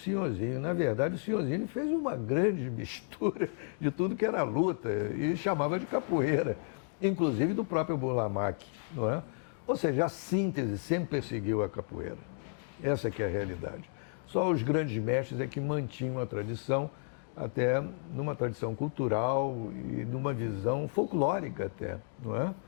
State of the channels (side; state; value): right; silent; 56 dB below the other